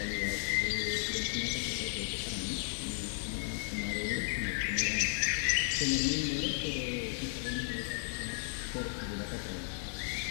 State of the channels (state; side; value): silent; right; 55 dB below the other